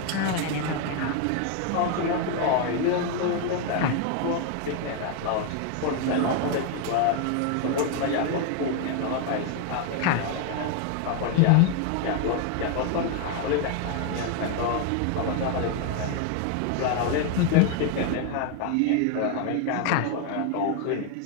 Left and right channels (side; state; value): both; different; correlation 0.01